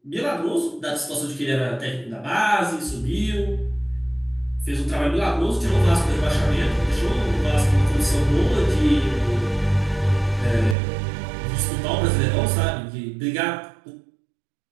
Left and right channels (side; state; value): left; drops out; at 10.8 s